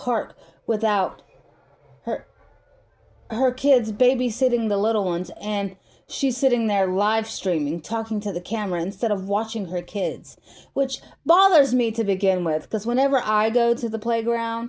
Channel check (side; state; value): both; identical; correlation 1.00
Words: without her kids babysitting the little ones, and she's sitting there live streaming, talking to the camera instead of watching her kids, which bothers me to begin with, because whenever I go to the